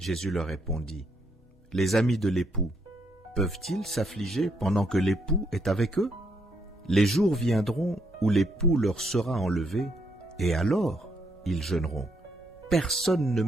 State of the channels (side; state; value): both; normal; correlation 0.75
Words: leur répondit, « Les amis de l'époux peuvent-ils s'affliger pendant que l'époux est avec eux? Les jours viendront où l'époux leur sera enlevé, et alors ils jeûneront. Personne ne